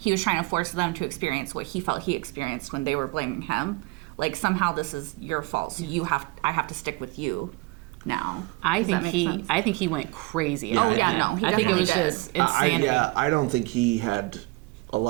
was trying to force them to experience what he felt he experienced when they were blaming him. Like, somehow this is your fault, so I have to stick with you now. I think he went crazy. I think it was just insanity. I don't think he had a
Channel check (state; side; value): quieter; left; 23.9 dB